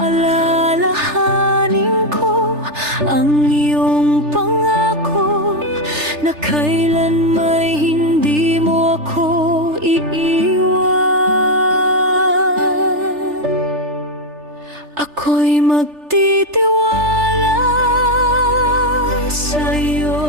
ko ang iyong pangako na kailan may hindi mo ako iiwan. Ako'y magtitiwala sa'yo,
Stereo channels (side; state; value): left; late; 3.3 ms